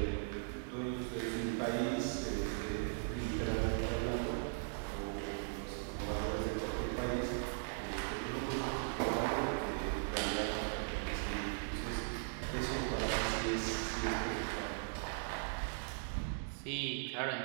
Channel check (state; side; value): silent; left; digital silence